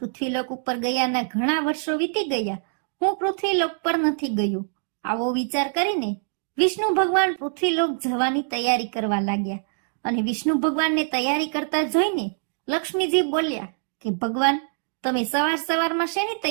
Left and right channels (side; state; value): left; silent; digital silence